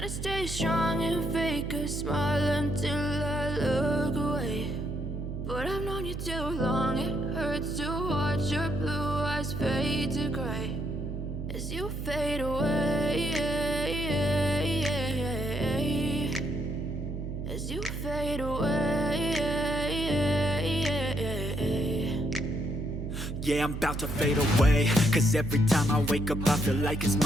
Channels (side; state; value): right; noise; hum, 6 dB below the sound